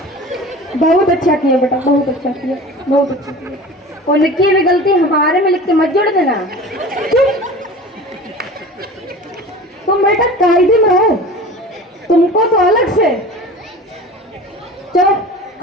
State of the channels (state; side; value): normal; both; correlation 0.37